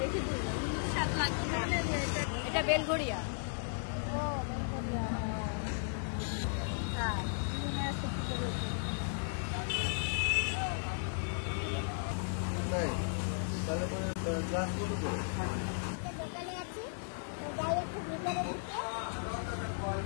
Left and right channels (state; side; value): silent; right; digital silence